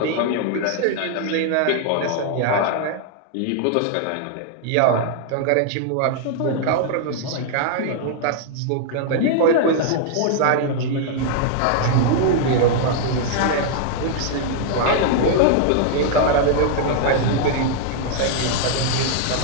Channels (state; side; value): different; both; correlation 0.00